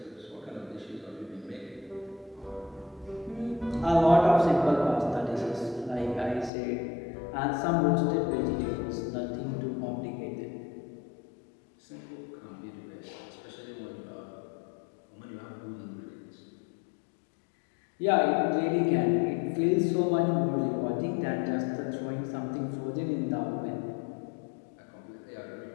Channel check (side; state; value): right; drops out; at 6.5 s